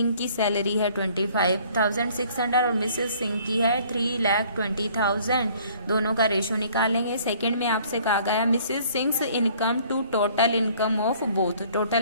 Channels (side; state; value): both; inverted; correlation -0.57